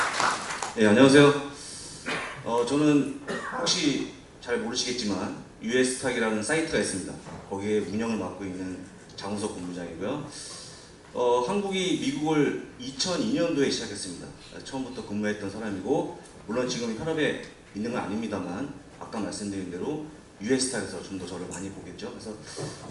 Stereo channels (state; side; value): identical; both; correlation 1.00